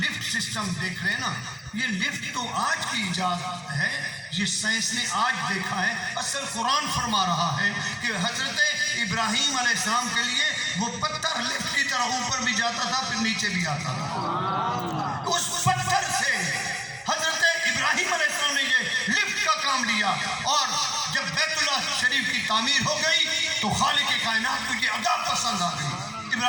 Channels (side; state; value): both; identical; correlation 1.00